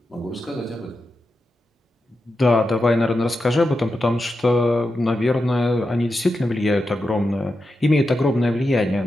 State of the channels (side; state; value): both; normal; correlation 0.89